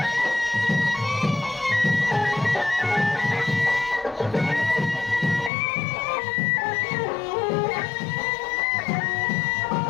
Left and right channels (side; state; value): right; drops out; at 5.5 s